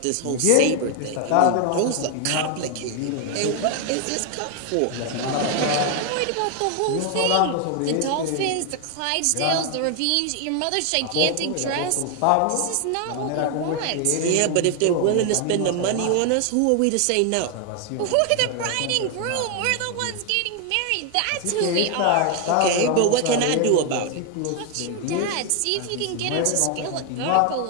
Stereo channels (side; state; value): both; different; correlation 0.01